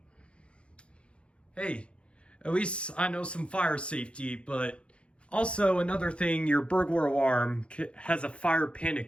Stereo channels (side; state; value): right; late; 0.059 ms